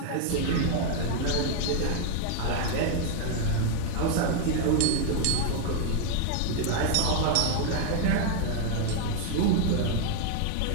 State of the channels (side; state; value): both; different; correlation 0.00